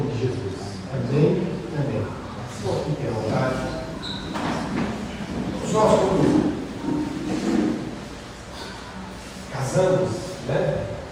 de Jesus. Amém. Amém. Senhor, fique à vontade. Nós, quando casamos, né?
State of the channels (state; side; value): identical; both; correlation 1.00